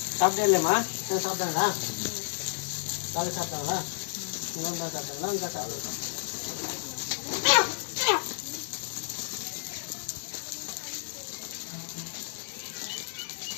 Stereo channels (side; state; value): right; silent; digital silence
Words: சாப்பிட்டே இல்லையம்மா? சாப்பிட்டாங்களா? காலை சாப்பிட்டாங்களா? இன்னொன்று தான் சாப்பிட்டாங்களா? இங்கே சாப்பிடுவோம்.